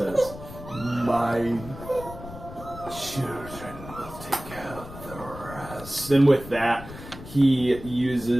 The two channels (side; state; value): left; noise; rumble, 14 dB below the sound